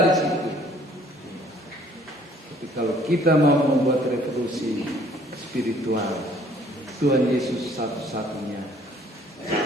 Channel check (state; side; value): normal; both; correlation 0.58